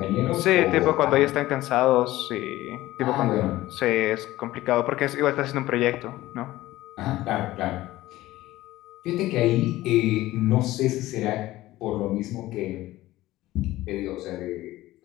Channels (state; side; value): quieter; right; 16.6 dB